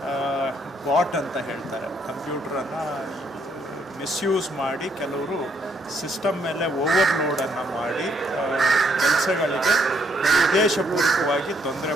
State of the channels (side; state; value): both; normal; correlation 0.71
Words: ಬಾಟ್ ಅಂತ ಹೇಳ್ತಾರೆ, ಕಂಪ್ಯೂಟ್ರನ್ನು ಮಿಸ್ಯೂಸ್ ಮಾಡಿ ಕೆಲವರು ಸಿಸ್ಟಮ್ ಮೇಲೆ ಓವರ್ಲೋಡನ್ನು ಮಾಡಿ ಕೆಲಸಗಳಿಗೆ ಉದ್ದೇಶಪೂರ್ವಕವಾಗಿ ತೊಂದರೆ